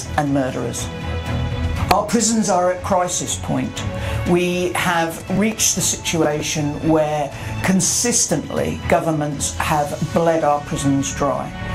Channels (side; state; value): both; identical; correlation 1.00